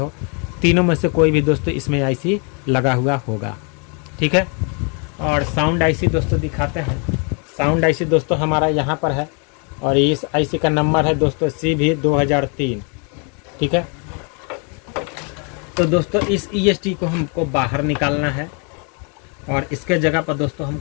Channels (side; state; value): right; quieter; 36.7 dB